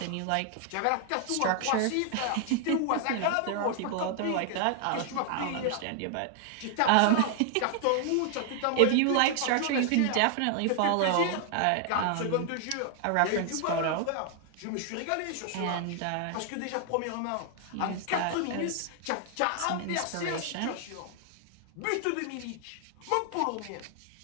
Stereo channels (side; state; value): both; different; correlation 0.00